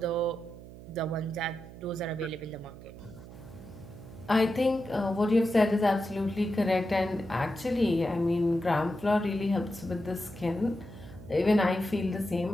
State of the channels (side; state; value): right; noise; hum, 16 dB below the sound